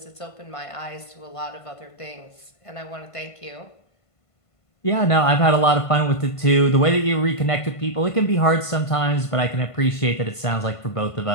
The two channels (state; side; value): late; right; 1.5 ms